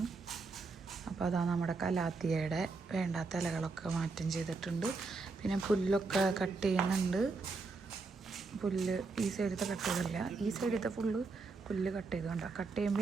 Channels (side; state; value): left; quieter; 4.1 dB